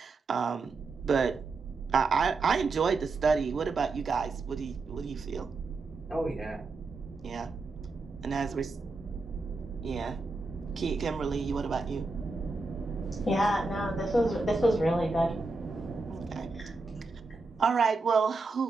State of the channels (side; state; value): left; quieter; 3.7 dB